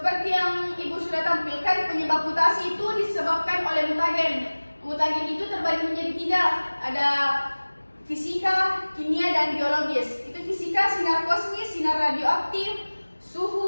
yang Ibu sudah tampilkan, penyebab mutasi itu disebabkan oleh mutagen. Mutagen itu terbagi menjadi 3. Ada fisika, kimia, dan biologis. Itu fisika, sinar kosmis, sinar radioaktif,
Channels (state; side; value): inverted; both; correlation -1.00